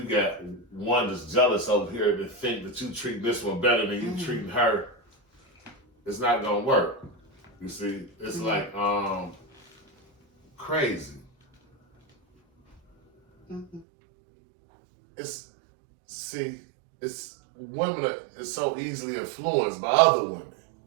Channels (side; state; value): left; drops out; at 13.9 s